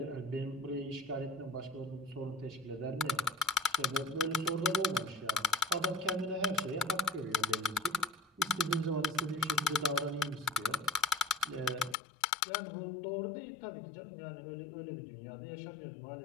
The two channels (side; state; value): right; drops out; at 12.0 s